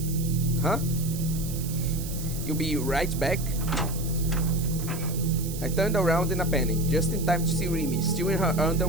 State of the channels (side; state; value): right; noise; hiss, 11 dB below the sound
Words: Huh? You'll be right back? I turned around in a panic, just in time to see Remy, still in her